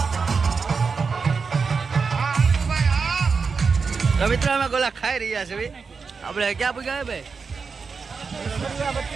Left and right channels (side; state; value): left; quieter; 5.1 dB